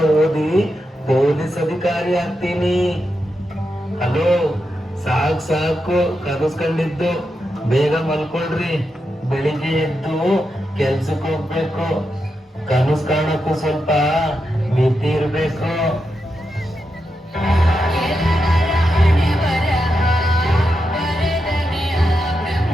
ಓದಿ ಪೊಲೀಸ್ ಅಧಿಕಾರಿ ಆಗ್ತೀನಿ. ಹಲೋ, ಸಾಕು ಸಾಕು ಕನಸ್ಕೊಂಡಿದ್ದು, ಬೇಗ ಮಲ್ಕೊಳ್ರಿ. ಬೆಳಿಗ್ಗೆ ಎದ್ದು ಕೆಲ್ಸಕ್ಕೆ ಹೋಗ್ಬೇಕು. ಕನಸು ಕಾಣಕ್ಕೂ ಸ್ವಲ್ಪ ಮಿತಿ ಇರ್ಬೇಕು.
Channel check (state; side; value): normal; both; correlation 0.86